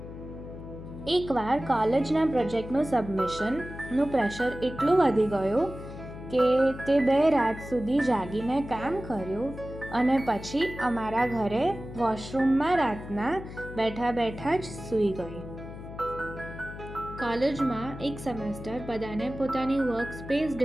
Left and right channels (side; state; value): left; noise; hum, 12 dB below the sound